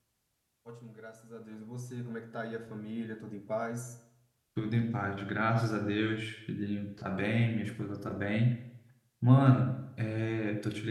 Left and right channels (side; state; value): both; identical; correlation 1.00